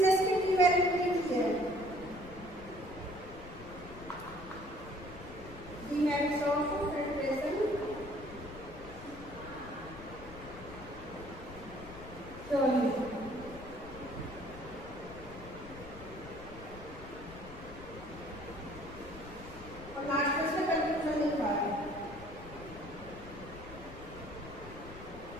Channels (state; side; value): noise; left; rumble, 14 dB below the sound